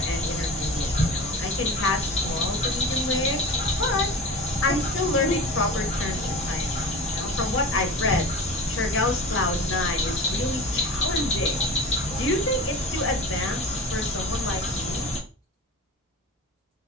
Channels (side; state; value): both; normal; correlation 0.33